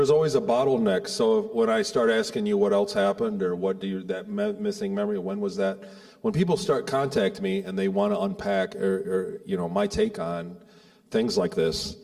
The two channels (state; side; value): identical; both; correlation 1.00